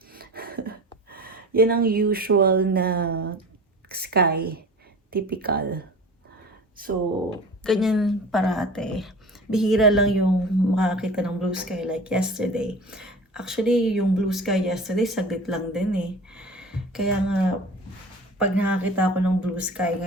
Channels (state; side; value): normal; both; correlation 0.38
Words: Yan ang usual na sky. Typical. So, ganyan parate. Bihira lang yung makakita ng blue sky like yesterday. Actually, yung blue sky yesterday, saglit lang din eh. Kaya nga, pag nakakita ako ng blue sky